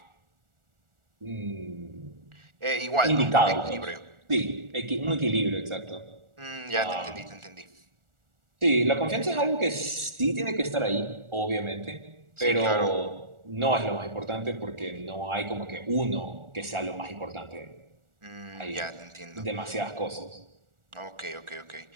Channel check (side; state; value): left; late; 1.4 ms